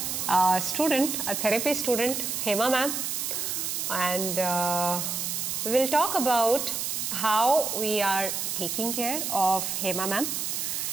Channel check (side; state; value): right; noise; hiss, 2 dB below the sound